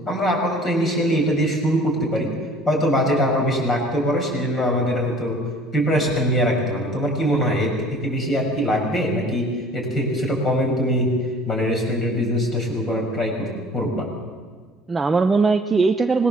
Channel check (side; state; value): both; normal; correlation 0.51